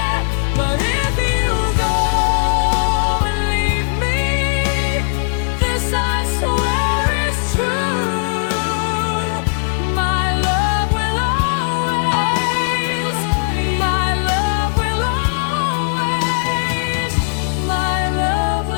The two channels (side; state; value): right; silent; digital silence